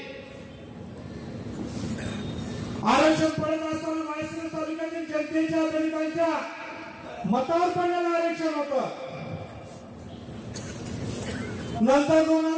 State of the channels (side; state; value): both; identical; correlation 1.00